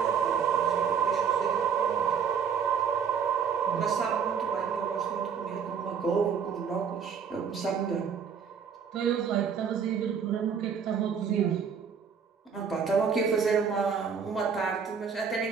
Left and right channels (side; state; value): left; quieter; 6.8 dB